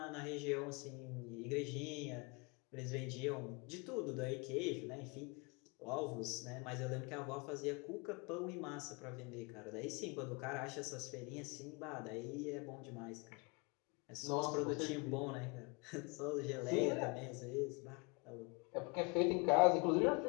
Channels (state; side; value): quieter; right; 30.4 dB